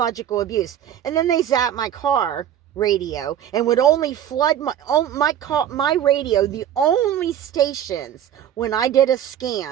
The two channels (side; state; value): left; quieter; 10.3 dB